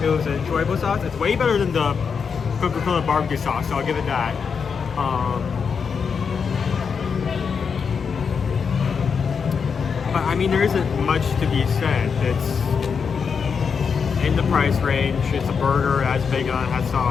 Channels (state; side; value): quieter; right; 6.1 dB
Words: It was an enjoyable sauce. It's way better than the Coca-Cola barbecue sauce, so I'll give it that. But I mean, there isn't much to be said. It's in the price range. It's a burger, it has bacon on it, has